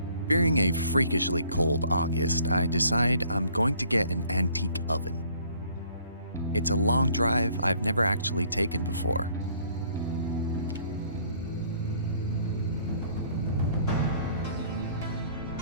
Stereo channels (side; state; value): both; inverted; correlation -0.60